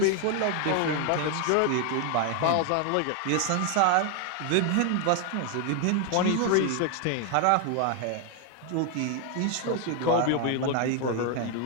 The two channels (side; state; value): both; different; correlation 0.01